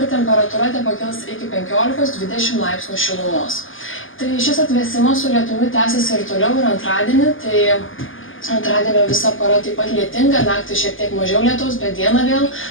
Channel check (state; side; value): late; right; 0.58 ms